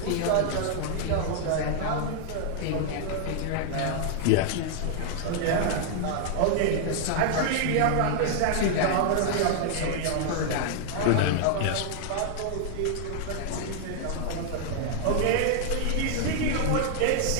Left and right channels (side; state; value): both; different; correlation 0.00